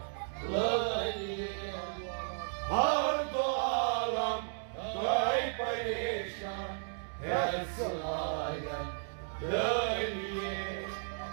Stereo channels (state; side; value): silent; left; 55 dB below the other